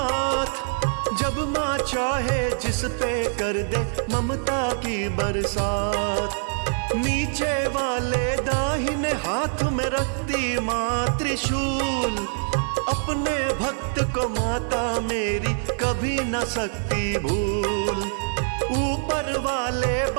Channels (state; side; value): silent; left; 62 dB below the other